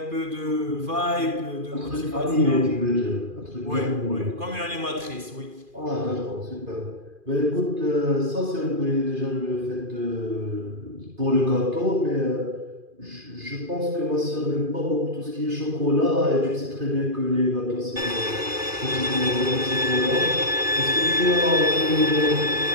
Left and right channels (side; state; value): left; late; 2.4 ms